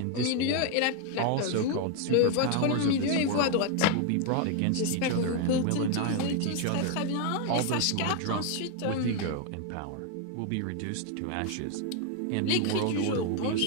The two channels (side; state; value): both; different; correlation 0.01